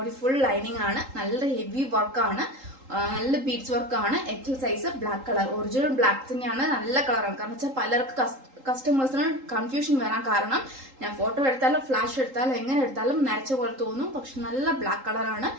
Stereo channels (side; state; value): left; late; 3.8 ms